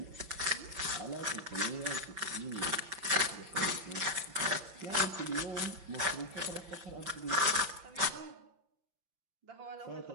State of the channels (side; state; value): left; late; 5.8 ms